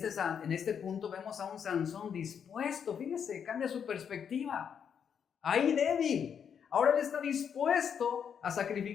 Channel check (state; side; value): quieter; right; 7.6 dB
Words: este punto vemos a un Sansón dispuesto, fíjese, cambia su perspectiva. Ahí débil, ahora él está dispuesto a